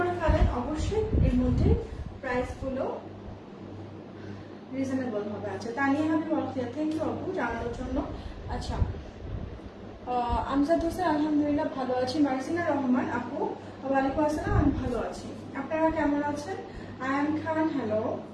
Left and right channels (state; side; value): identical; both; correlation 1.00